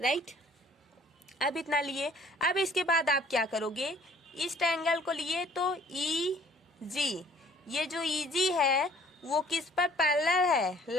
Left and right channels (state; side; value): normal; both; correlation 0.55